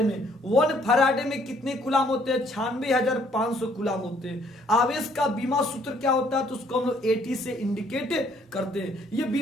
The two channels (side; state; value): both; normal; correlation 0.64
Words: में। 1 फैराडे में कितने कूलाम होते हैं, 96,500 कूलाम होते हैं। आवेश का बीमा सूत्र क्या होता है, तो उसको हम लोग AT से इंडिकेट करते हैं। ये